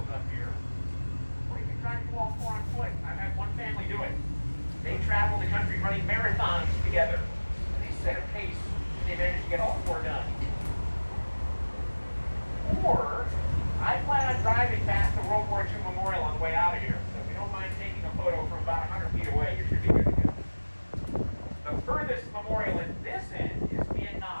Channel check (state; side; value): inverted; both; correlation -1.00